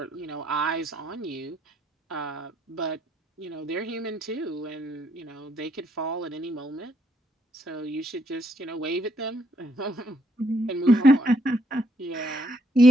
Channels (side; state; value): both; normal; correlation 0.72